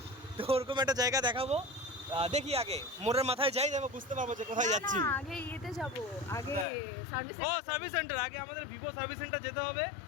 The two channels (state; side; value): drops out; right; at 6.7 s